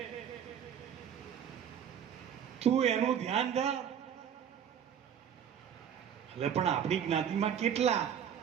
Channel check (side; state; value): left; quieter; 8.8 dB